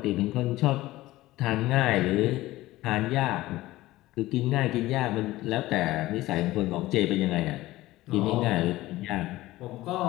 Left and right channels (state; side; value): quieter; right; 17.3 dB